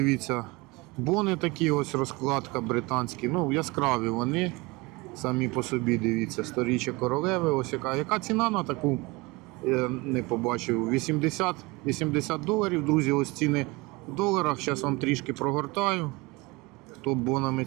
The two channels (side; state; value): left; quieter; 24.4 dB